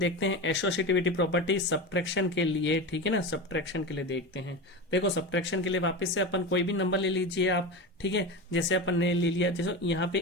हैं एसोसिएटिविटी प्रॉपर्टी सब्ट्रैक्शन के लिए। ठीक है ना, सब्ट्रैक्शन के लिए देखते हैं। देखो सब्ट्रैक्शन के लिए वापस से अपन कोई भी नंबर ले लीजिए आप। ठीक है, जैसे अपन ने ले लिया, जैसे यहाँ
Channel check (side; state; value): both; normal; correlation 0.24